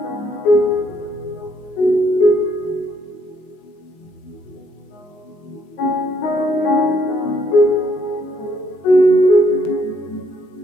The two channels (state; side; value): late; right; 19 ms